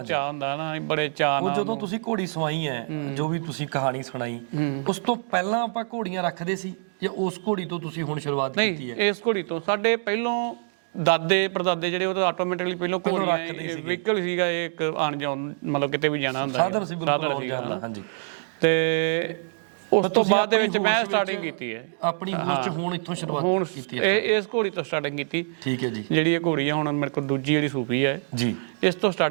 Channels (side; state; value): left; silent; digital silence